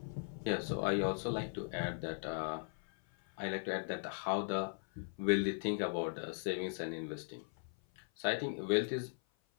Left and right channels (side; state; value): right; silent; 52 dB below the other